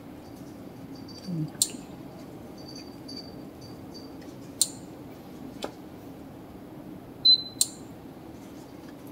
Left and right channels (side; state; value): both; identical; correlation 1.00